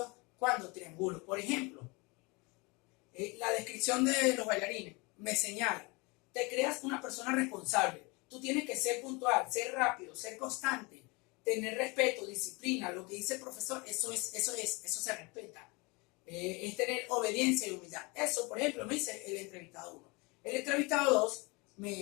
cuando triangulo. Por ejemplo, la descripción de los bailarines me señala: te creas una persona responsable, tú tienes que ser puntual, ser rápido, ser constante, tener respeto, disciplina. Lo que dice el profesor, eso se respeta. Es tener obediencia y humildad. Eso, por ejemplo, me dice el entrevistado 1. El entrevistado 2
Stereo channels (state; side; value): quieter; right; 27.2 dB